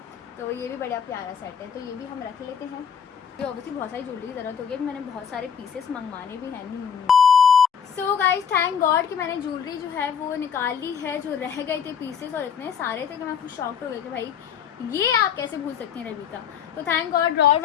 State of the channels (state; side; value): quieter; right; 7.5 dB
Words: तो ये भी बड़ा प्यारा सेट है, तो ये भी हम रख लेते हैं। ये ऑब्वियसली बहुत सारी ज्वेलरी की ज़रूरत होगी, मैंने बहुत सारे पीसेस मंगवाने भी हैं। सो गाइज थैंक गॉड कि मैंने ज्वेलरी जो है वो निकाल ली है, जो रह गए थे पीसेस और इतने सारे थे कि मैं खुद शॉक्ड हो गई कि भाई ये आप कैसे भूल सकती हैं रविका। तो थैंक गॉड ड्रॉर